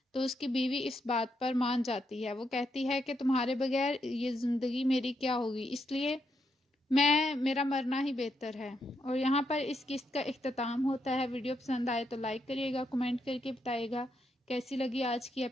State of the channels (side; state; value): both; normal; correlation 0.80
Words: تو اس کی بیوی اس بات پر مان جاتی ہے۔ وہ کہتی ہے کہ تمہارے بغیر یہ زندگی میری کیا ہوگی، اس لیے میرا مرنا ہی بہتر ہے۔ اور یہاں پر اس قسط کا اختتام ہوتا ہے۔ ویڈیو پسند آئے تو لائک کریے گا، کمنٹ کر کے بتائیے گا کیسی لگی آج کی